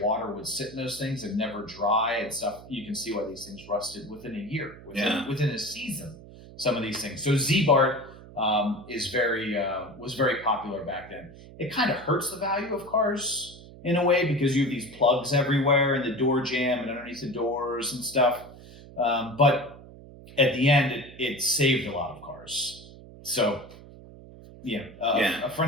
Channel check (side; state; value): right; noise; hum, 18 dB below the sound